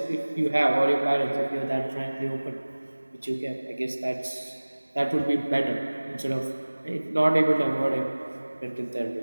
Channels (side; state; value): both; inverted; correlation -1.00